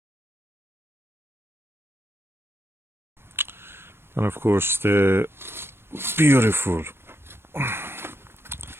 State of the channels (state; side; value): late; left; 0.12 ms